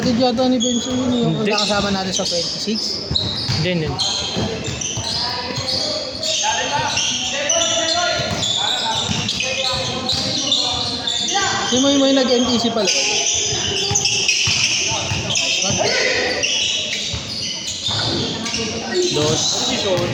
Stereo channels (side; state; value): both; identical; correlation 1.00